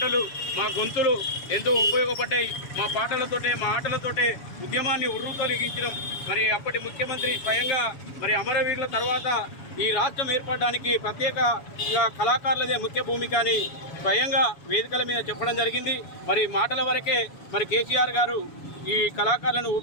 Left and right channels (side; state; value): right; late; 7.1 ms